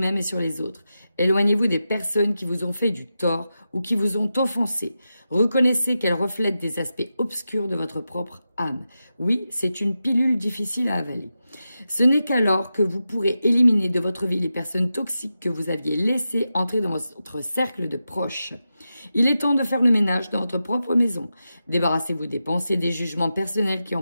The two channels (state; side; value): inverted; both; correlation -0.90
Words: et sur les autres. Éloignez-vous des personnes qui vous ont fait du tort ou qui vous ont offensé. Reconnaissez qu'elles reflètent des aspects obscurs de votre propre âme. Oui, c'est une pilule difficile à avaler. Ce n'est qu'alors que vous pourrez éliminer de votre vie les personnes toxiques que vous aviez laissées entrer dans votre cercle de proches. Il est temps de faire le ménage dans votre propre maison. Débarrassez-vous des pensées, des jugements personnels qui